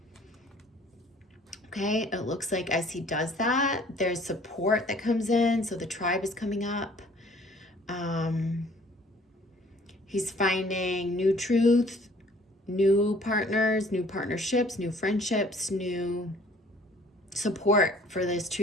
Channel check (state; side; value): normal; both; correlation 0.55